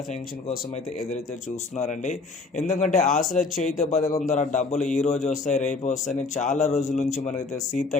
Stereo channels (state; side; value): quieter; right; 3.9 dB